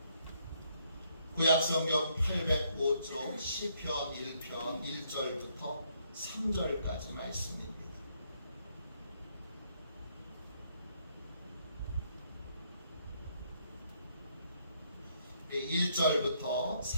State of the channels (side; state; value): both; inverted; correlation -0.71